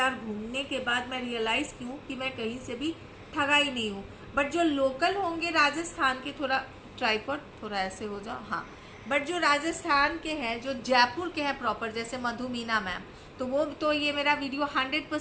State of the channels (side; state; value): both; identical; correlation 1.00